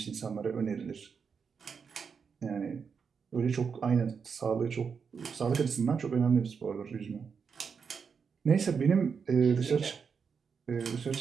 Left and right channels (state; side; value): quieter; left; 6.0 dB